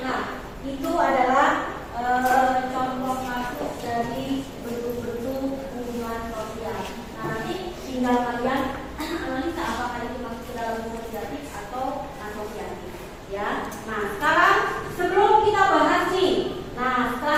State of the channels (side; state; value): both; identical; correlation 1.00